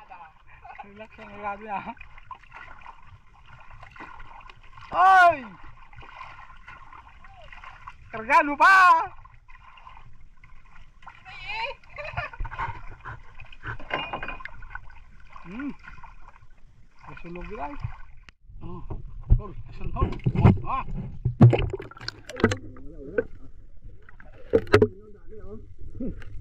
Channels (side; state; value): both; identical; correlation 1.00